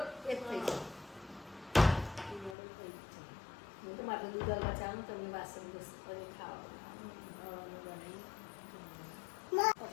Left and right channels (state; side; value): drops out; right; at 2.6 s